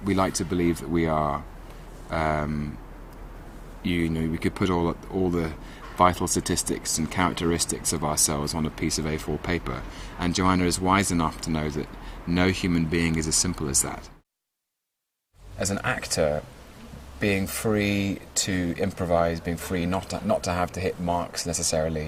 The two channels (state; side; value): identical; both; correlation 1.00